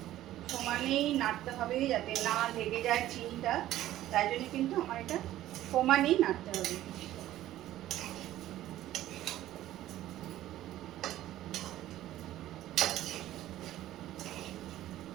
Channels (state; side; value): quieter; left; 14.0 dB